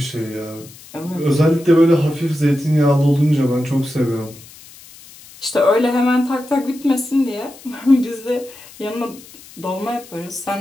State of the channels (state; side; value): noise; left; hiss, 21 dB below the sound